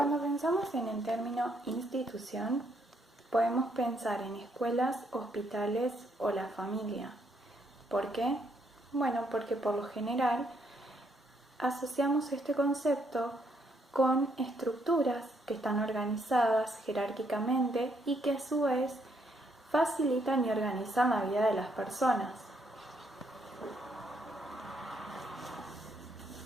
pensamos en el término institución, podemos pensar en escuelas, hospitales o la familia. ¿Por qué? Bueno, porque por lo general asociamos este concepto con estructuras que están organizadas jerárquicamente y que a su vez facilitan y organizan la vida de las personas.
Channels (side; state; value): both; normal; correlation 0.73